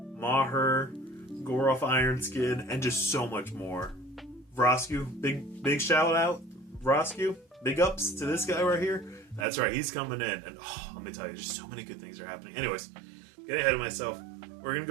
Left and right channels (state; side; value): drops out; left; at 9.5 s